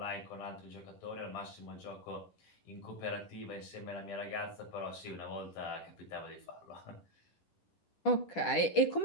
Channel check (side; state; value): right; late; 10 ms